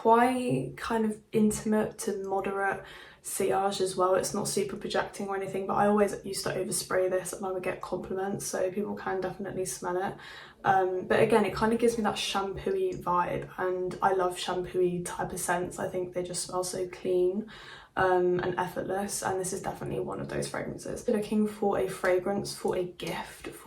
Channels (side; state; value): both; identical; correlation 1.00